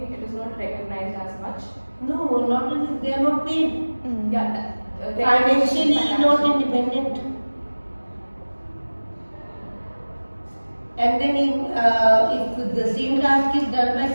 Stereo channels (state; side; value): inverted; both; correlation -1.00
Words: it is not recognized as much. No, not only they are not paid. Yeah, financially not independent. And then if the same task is done by